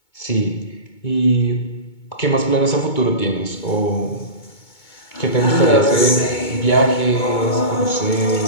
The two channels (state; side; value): late; right; 2.2 ms